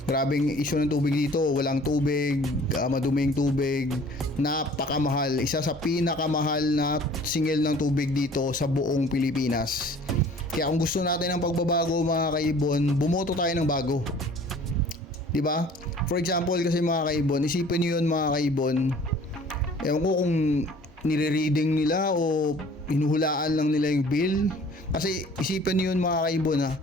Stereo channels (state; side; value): normal; both; correlation 0.50